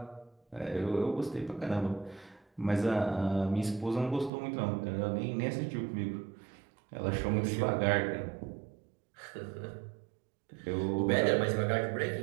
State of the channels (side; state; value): left; drops out; at 4.3 s